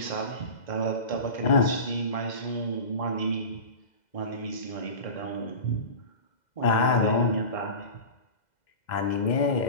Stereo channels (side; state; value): right; late; 2.0 ms